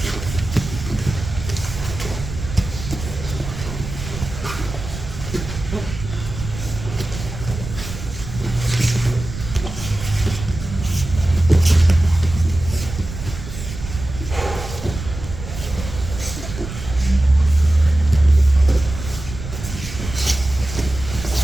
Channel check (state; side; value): noise; right; rumble, 9 dB below the sound